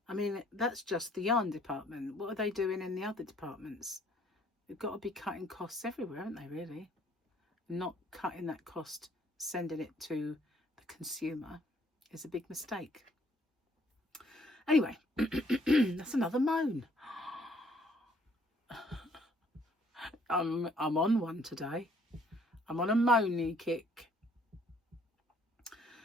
I mean, that's just the yarn department. What are they doing in the other departments? They've got to be cutting costs everywhere, haven't they, really? Not cutting that cost, sending it to the consumer, is a big mistake. Anyway, that's another moan. I'm on one today. I'm on a moany kick.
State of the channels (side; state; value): both; normal; correlation 0.63